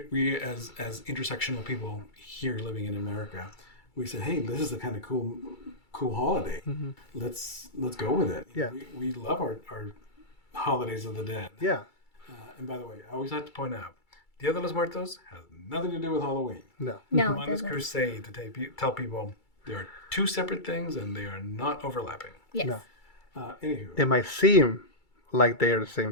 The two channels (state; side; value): late; right; 2.3 ms